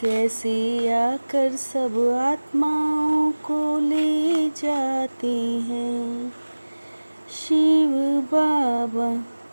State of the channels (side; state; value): both; inverted; correlation -1.00